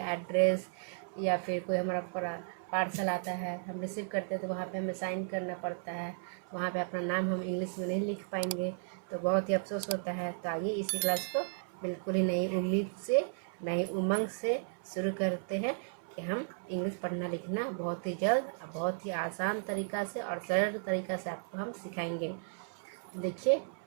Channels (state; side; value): silent; left; 55 dB below the other